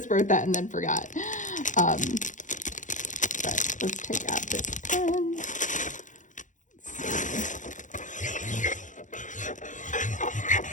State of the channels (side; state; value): right; late; 0.37 ms